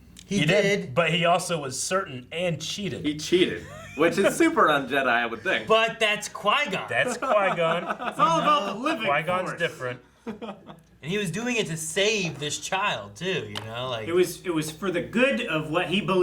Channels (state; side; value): identical; both; correlation 1.00